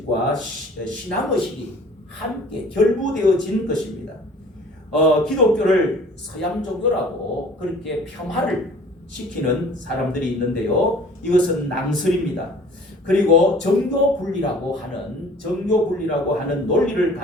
신앙의식이 함께 결부되어진 것입니다. 기독교를 서양 종교라고 그렇게 폄하를 시키는 사람들이 있는데요. 이것은 낭설입니다. 그리고 정교 분리라고 하는 논리를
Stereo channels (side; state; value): both; normal; correlation 0.49